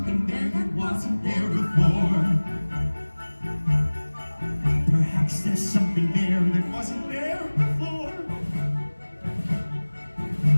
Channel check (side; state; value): both; inverted; correlation -1.00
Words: there that wasn't there before. Perhaps there's something there that wasn't there before.